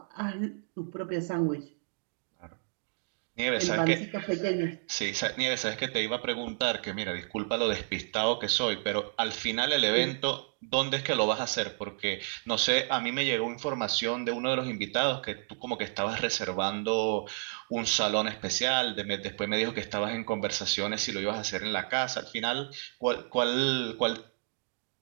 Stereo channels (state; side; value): silent; left; digital silence